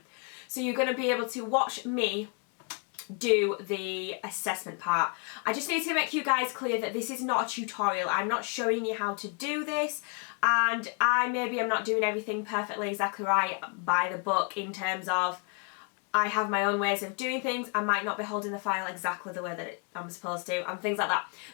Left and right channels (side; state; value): right; quieter; 37.9 dB